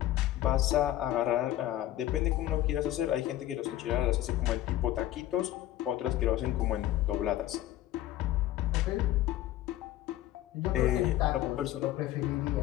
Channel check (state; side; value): quieter; right; 13.8 dB